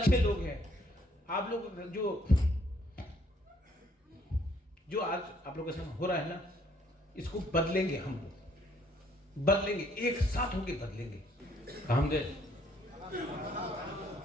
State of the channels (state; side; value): normal; both; correlation 0.65